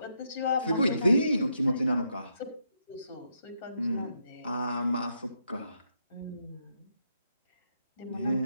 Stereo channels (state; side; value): inverted; both; correlation -0.79